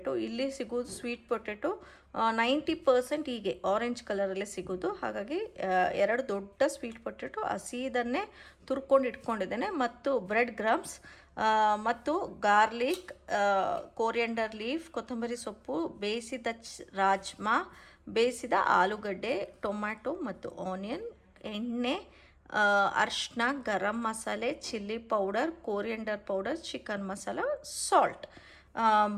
ಇಲ್ಲಿ ಸಿಗೋದು ಸ್ವೀಟ್ ಪೊಟೆಟೊ 90% ಹೀಗೆ ಆರೆಂಜ್ ಕಲರಲ್ಲೇ ಸಿಗೋದು. ಹಾಗಾಗಿ 2 ದೊಡ್ಡ ಸ್ವೀಟ್ ಪೊಟೆಟೊ ಹಸಿದನ್ನೇ ತುರ್ಕೊಂಡು ಇಟ್ಕೊಂಡಿದ್ದೇನೆ. ಮತ್ತು ಬ್ರೆಡ್ ಗ್ರಾಮ್ಸ್, ಮತ್ತು ಗಾರ್ಲಿಕ್, ಕೋರಿಯಂಡರ್ ಲೀಫ್, ಕೊತ್ತಂಬರಿ ಸೊಪ್ಪು, ಬೇಯಿಸಿದ ರಾಜ್ಮಾ, ಬೇಯಿಸಿದ ಆಲೂಗಡ್ಡೆ, ಟೊಮ್ಯಾಟೊ ಮತ್ತು ಆನಿಯನ್, ಎಣ್ಣೆ, ಅರಿಶಿನ, garam masala, chilli powder, coriander powder, chicken masala, salt.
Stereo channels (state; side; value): identical; both; correlation 1.00